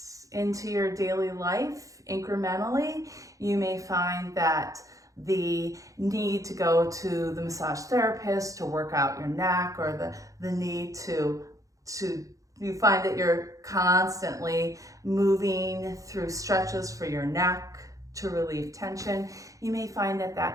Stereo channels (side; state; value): left; late; 0.16 ms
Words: into your daily life incrementally, you may find that the need to go to the massage therapist to work out your neck, or the need to you find that you're constantly moving through stretches for your neck to relieve tension, you may find that